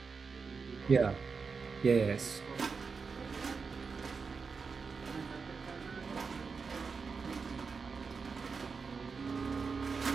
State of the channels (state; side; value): quieter; left; 5.1 dB